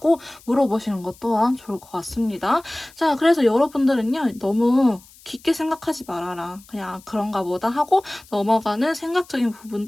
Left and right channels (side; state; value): left; noise; hiss, 25 dB below the sound